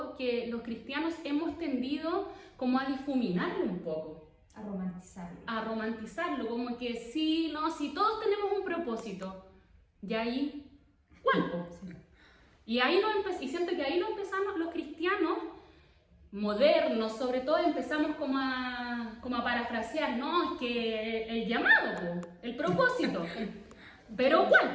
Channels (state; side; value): identical; both; correlation 1.00